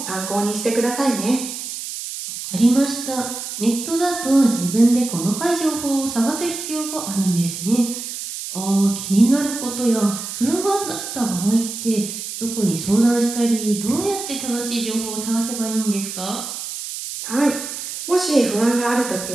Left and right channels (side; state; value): right; noise; hiss, 7 dB below the sound